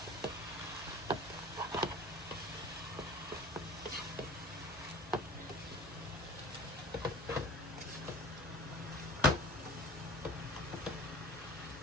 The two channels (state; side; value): normal; both; correlation 0.41